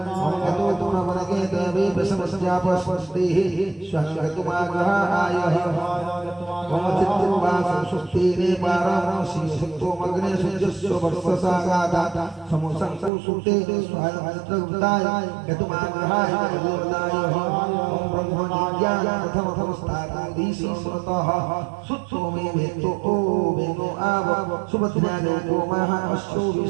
मम गतो तुमवनके देवे समस्यापस्तेः स्वहंगतुमागाय मम चित्तवासं सुस्तेने पारामोषि सत्तो मग्ने सज्जस्व वर्षसागादा समुसंसु सुते स्वायंत्रगुप्ताय यतुमाग्रहाय देवताय ओम ब्रह्मज्ञान प्रथमस्थानाधीशि स्मृतः सुत्तो मे वेत्तो ओ वेनो आव सुभद्राजो गोमः अश्वो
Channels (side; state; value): left; drops out; at 13.1 s